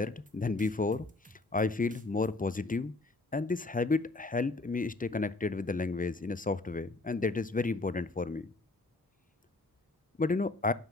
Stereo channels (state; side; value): quieter; right; 3.2 dB